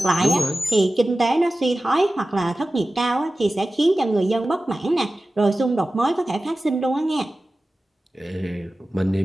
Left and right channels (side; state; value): both; normal; correlation 0.96